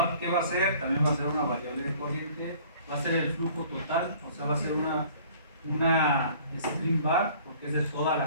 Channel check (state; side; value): inverted; both; correlation -0.52